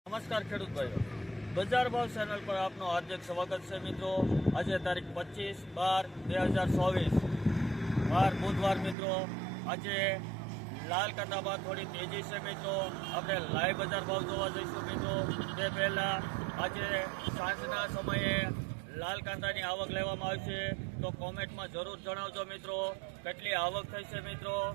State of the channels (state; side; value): drops out; left; at 9.0 s